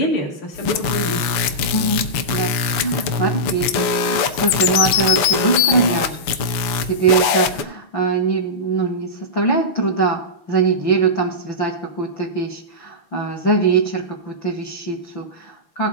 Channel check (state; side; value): late; right; 6.9 ms